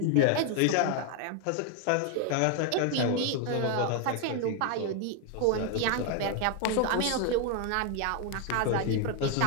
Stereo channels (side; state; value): both; different; correlation 0.01